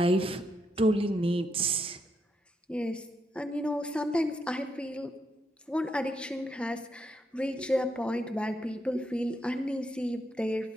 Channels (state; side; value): normal; both; correlation 0.80